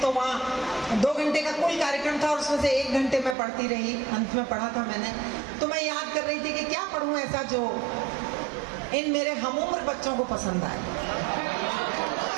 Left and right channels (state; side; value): drops out; left; at 3.4 s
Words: तो वहाँ 2 घंटे का कुल कार्यक्रम था और उसमें से 1 घंटे मैं पढ़ती रही, अंत में पढ़ा था मैंने। तो मैं याद कर रही थी कि क्या पढ़ूं ऐसा जो इन मेरे हमउम्र बच्चों को पसंद आए।